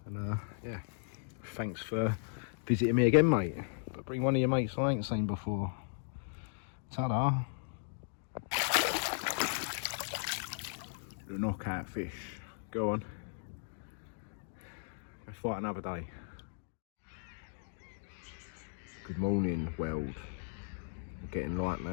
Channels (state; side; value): silent; right; digital silence